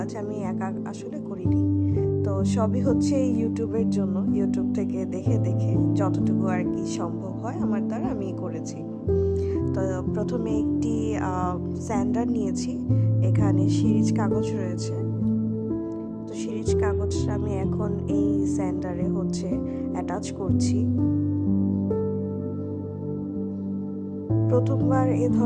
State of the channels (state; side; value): identical; both; correlation 1.00